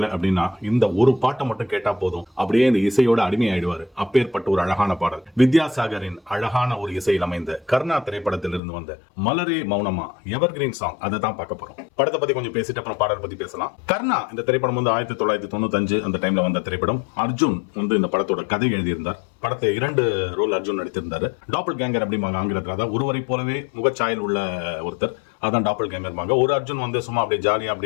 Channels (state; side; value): drops out; right; at 8.6 s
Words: அப்படின்னா இந்த ஒரு பாட்டை மட்டும் கேட்டா போதும், அப்படியே இந்த இசையோட அடிமை ஆயிடுவாரு. அப்பேற்பட்ட ஒரு அழகான பாடல். வித்யாசாகரின் அழகான ஒரு இசையில் அமைந்த கர்ணா திரைப்படத்தில் இருந்து வந்த மலரே மௌனமா எவர்கிரீன் சாங், அதை தான் பார்க்க போறோம். படத்தை பத்தி கொஞ்சம் பேசிட்டு அப்புறம் பாடல் பத்தி பேசலாம். கர்ணா இந்த திரைப்படம் 1995 அந்த டைம்ல வந்த திரைப்படம். அர்ஜுன் இந்த படத்தோட கதை எழுதியிருந்தார். படத்தை 2 ரோல் அர்ஜுன் நடித்திருந்தாரு. டாப்பல் கேங்கர் அப்படிம்பாங்க ஆங்கிலத்தில். அதாவது ஒருவரை போலவே முகச்சாயல் உள்ள ஒருத்தர், அதான் டாப்பல் கேங்கர்பாங்க. ஒரு அர்ஜுன் சும்மா அப்படியே ஜாலியா